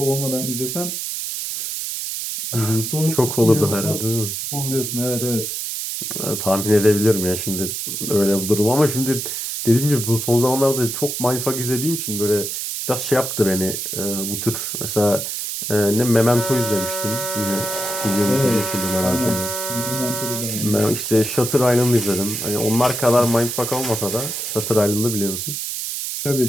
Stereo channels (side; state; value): right; noise; hiss, 4 dB below the sound